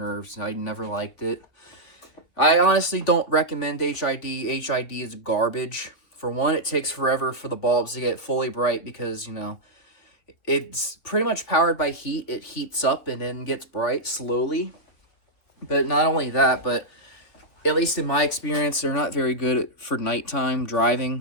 and I never liked it. I honestly don't recommend HID. HID is garbage. For one, it takes forever for the bulbs to get fully bright because, you know, it's pretty much powered by heat. It heats up and then gets bright slowly. But not only that, but at least in my experience, they're not very good for nighttime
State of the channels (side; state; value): right; late; 3.5 ms